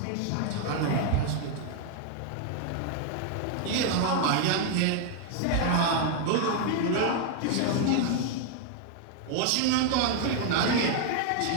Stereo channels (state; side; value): different; both; correlation 0.00